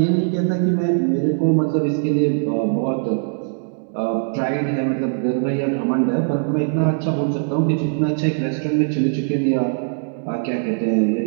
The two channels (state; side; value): silent; left; digital silence